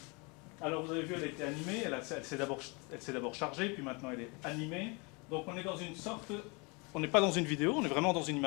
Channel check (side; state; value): right; quieter; 29.8 dB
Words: Alors vous avez vu, elle a été animée, elle s'est d'abord chargée, puis maintenant elle est animée. Donc on est dans une sorte, on n'est pas dans une vidéo, on est vraiment dans une